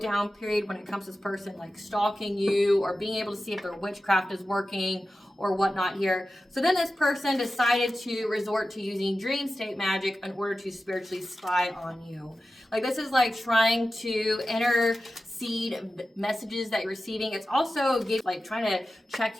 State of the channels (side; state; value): both; normal; correlation 0.93